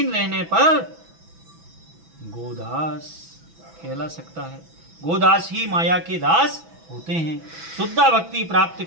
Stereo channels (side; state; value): left; late; 6.1 ms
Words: रहने पर गोदास कहला सकता है। गोदास ही माया के दास होते हैं। शुद्धा भक्ति प्राप्त